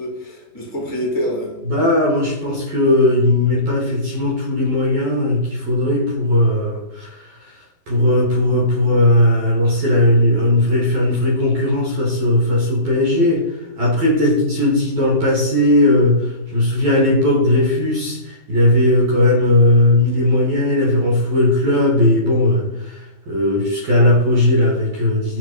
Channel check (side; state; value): left; late; 12 ms